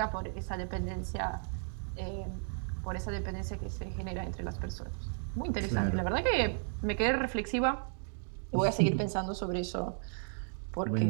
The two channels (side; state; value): left; silent; 55 dB below the other